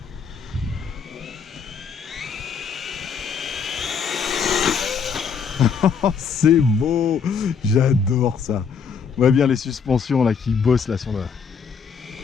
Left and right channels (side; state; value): right; quieter; 6.2 dB